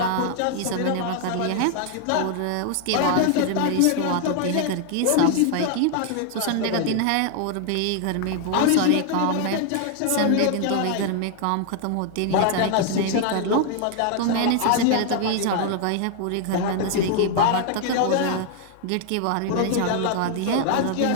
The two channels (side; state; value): both; different; correlation 0.00